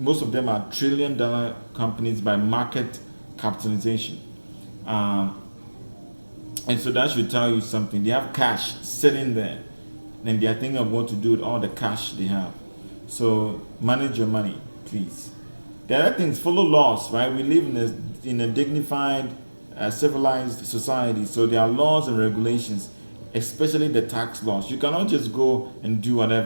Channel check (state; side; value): inverted; both; correlation -1.00